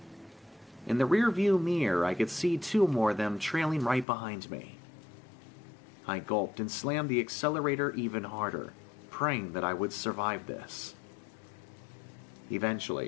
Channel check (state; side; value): drops out; right; at 4.0 s